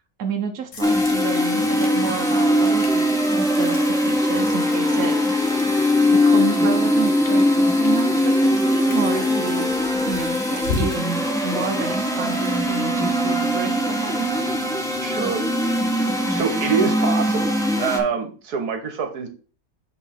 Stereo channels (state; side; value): normal; both; correlation 0.68